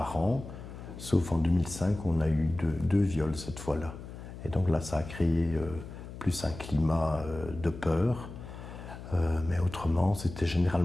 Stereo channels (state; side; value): noise; left; hum, 12 dB below the sound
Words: an, sauf en 2005 on a eu deux viols cette fois-là. Et donc là ça a créé plus un climat de peur. Mais autrement, c'était